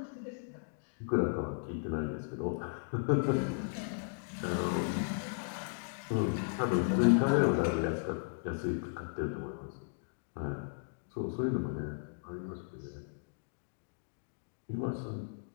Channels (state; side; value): silent; right; digital silence